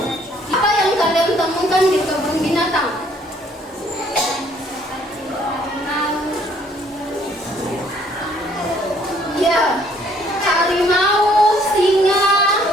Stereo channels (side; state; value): both; normal; correlation 0.62